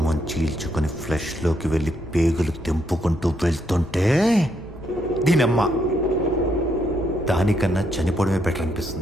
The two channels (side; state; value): both; normal; correlation 0.76